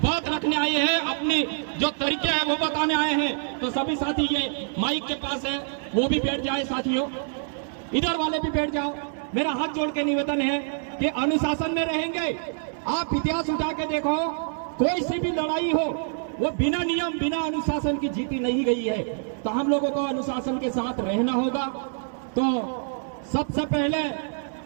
रखने आए हैं, अपनी जो तरीके हैं वो बताने आए हैं। तो सभी साथी ये माइक के पास है, वो भी बैठ जाए साथियों, इधर वाले भी बैठ जाओ। मेरा हाथ जोड़ के निवेदन है कि अनुशासन में रहेंगे। आप इतिहास उठा के देखो, कोई सी भी लड़ाई हो वो बिना नियम बिना अनुशासन की जीती नहीं गई है। तो हम लोगों को अनुशासन के साथ रहना होगा। तो सबसे पहले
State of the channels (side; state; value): left; silent; 61 dB below the other